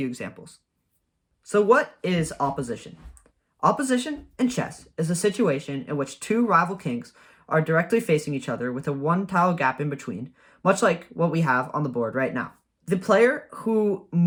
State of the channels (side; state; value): both; identical; correlation 1.00